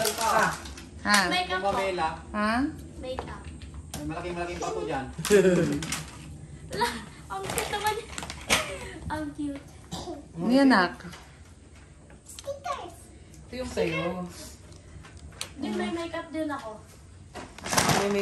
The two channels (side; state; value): both; identical; correlation 1.00